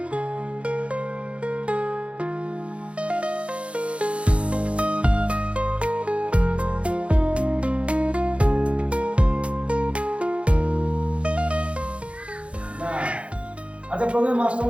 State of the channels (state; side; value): late; left; 0.061 ms